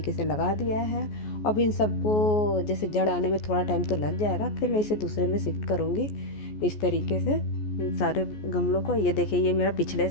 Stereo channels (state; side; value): late; right; 14 ms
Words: से लगा दिया है। अब इन सबको जैसे जड़ आने में थोड़ा टाइम तो लग जाएगा, फिर मैं इसे दूसरे में शिफ्ट करूँगी इस तरीके से इन सारे गमलों को। ये देखिए ये मेरा पिछले